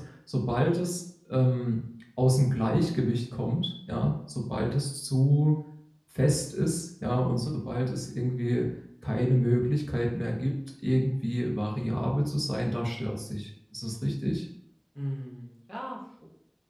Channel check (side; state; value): both; identical; correlation 1.00